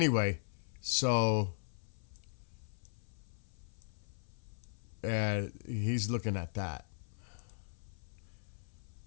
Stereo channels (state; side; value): silent; right; 52 dB below the other